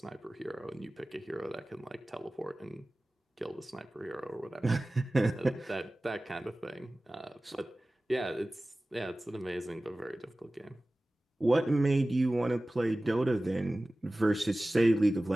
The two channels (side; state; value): both; normal; correlation 0.97